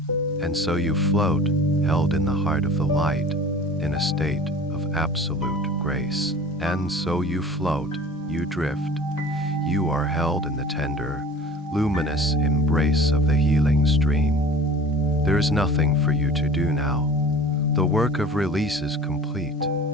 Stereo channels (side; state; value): both; normal; correlation 0.42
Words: And so you float, held in the heart of the light, in a state of absolute grace. And so you float, you drift. You are held in the tender, luminous embrace of the healing stream. There is nothing for you to do now. The work of release is complete.